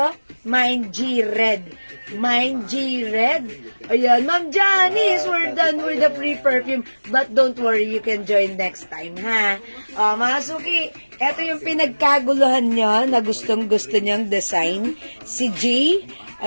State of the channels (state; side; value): inverted; both; correlation -1.00